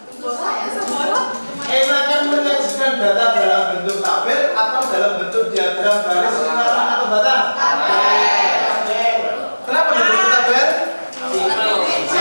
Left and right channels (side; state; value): both; inverted; correlation -1.00